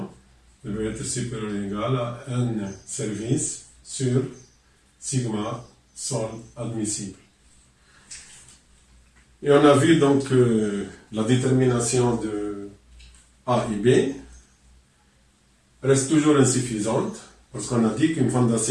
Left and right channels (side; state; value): both; identical; correlation 1.00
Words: devait être supérieur ou égal à N service sur sigma sol admissible. Et on a vu donc la détermination de A et B reste toujours insuffisante parce qu'on a dit qu'une